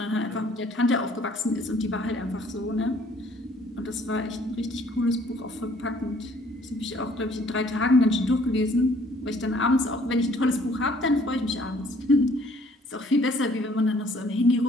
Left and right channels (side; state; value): both; normal; correlation 0.59